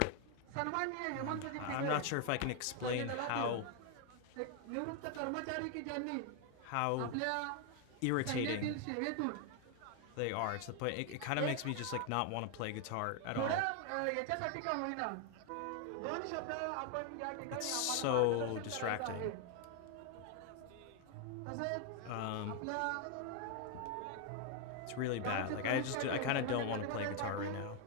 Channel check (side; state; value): both; different; correlation 0.00